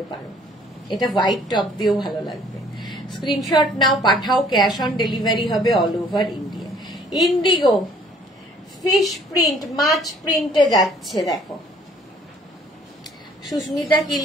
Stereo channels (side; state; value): both; normal; correlation 0.58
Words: পারো। এটা হোয়াইট টপ দিয়েও ভালো লাগবে। স্ক্রিনশট নাও, পাঠাও। ক্যাশ অন ডেলিভারি হবে all over India. Indigo fish print, মাছ প্রিন্টে যাচ্ছে। দেখো সুস্মিতা কি